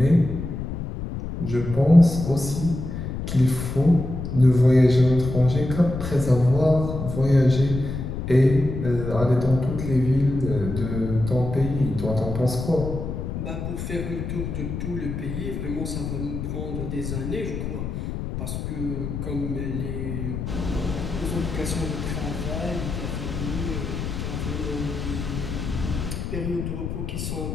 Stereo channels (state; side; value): noise; left; rumble, 5 dB below the sound